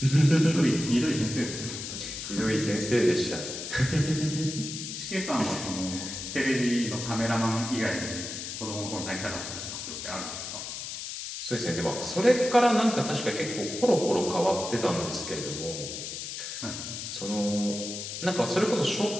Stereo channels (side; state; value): left; noise; hiss, 7 dB below the sound